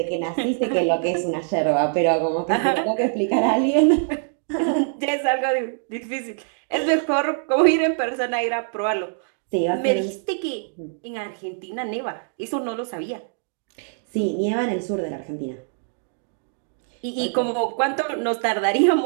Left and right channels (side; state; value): left; silent; digital silence